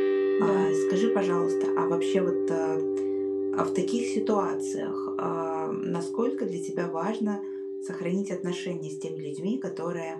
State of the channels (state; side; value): identical; both; correlation 1.00